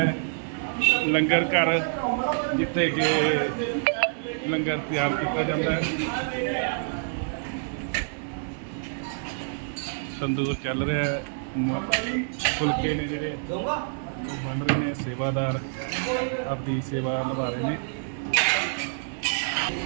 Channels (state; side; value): silent; left; digital silence